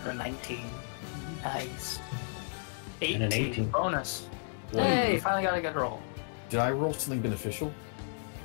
or 19. Nice. And an 18. Bonus. One. Hey, finally got a good roll. Did I roll something beneficial?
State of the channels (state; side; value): silent; right; 56 dB below the other